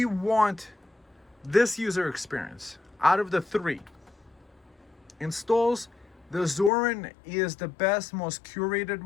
want this user experience. Out of the three installs, the Zorin is the best, most curated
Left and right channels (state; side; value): drops out; right; at 6.7 s